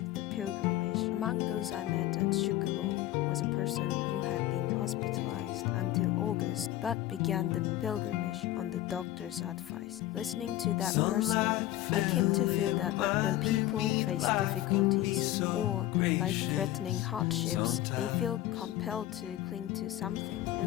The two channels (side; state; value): right; quieter; 14.5 dB